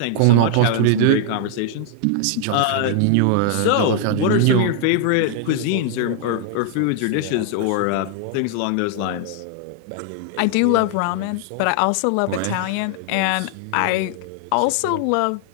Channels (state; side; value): different; both; correlation 0.00